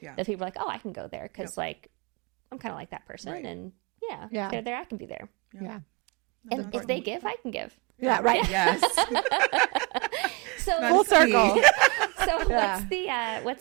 Yeah. That people are oh, I can go there because I'm kind of like that person. Right. And Yeah. if they're there, I can be there. Yeah. And if they give, I can give. Yeah. Right. Yes. So Full circle. So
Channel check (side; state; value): left; quieter; 29.0 dB